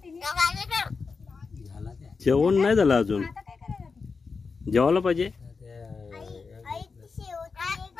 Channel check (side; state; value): right; quieter; 4.8 dB